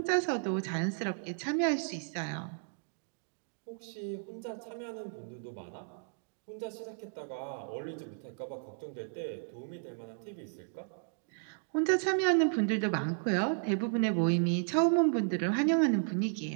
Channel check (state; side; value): silent; left; digital silence